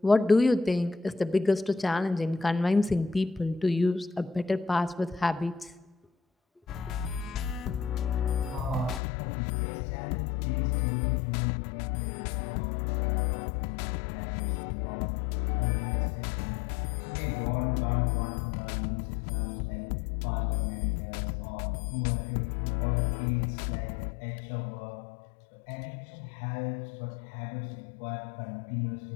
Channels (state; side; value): drops out; right; at 9.0 s